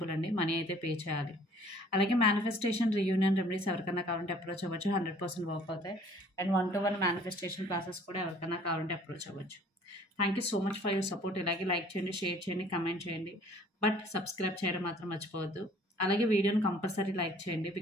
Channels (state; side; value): normal; both; correlation 0.55